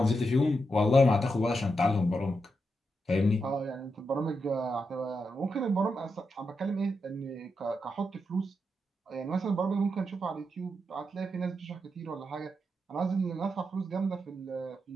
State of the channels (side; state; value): both; normal; correlation 0.85